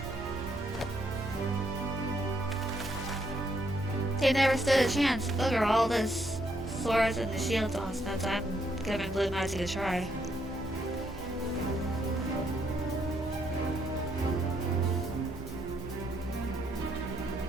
They never stood a chance. Look at all this swords and the shields on since I'm giving blue magic a try.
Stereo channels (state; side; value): normal; both; correlation 0.74